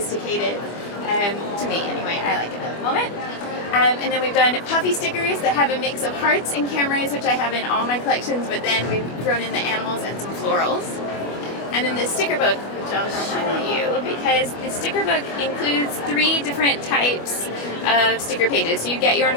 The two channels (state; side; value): late; right; 25 ms